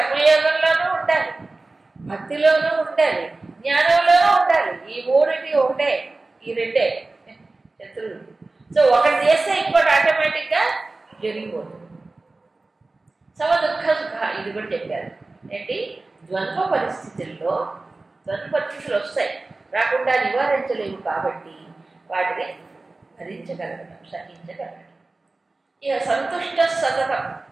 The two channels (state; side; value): quieter; left; 3.3 dB